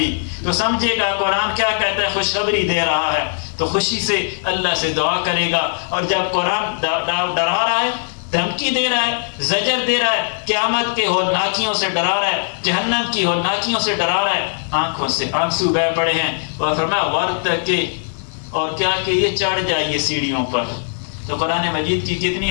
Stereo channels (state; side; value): silent; right; 59 dB below the other